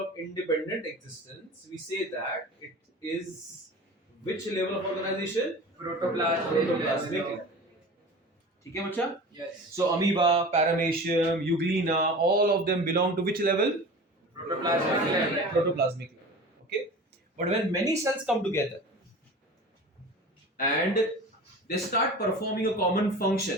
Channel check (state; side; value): normal; both; correlation 0.36